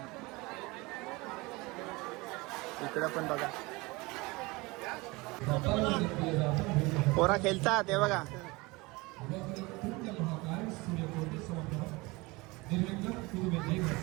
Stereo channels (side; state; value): left; quieter; 23.8 dB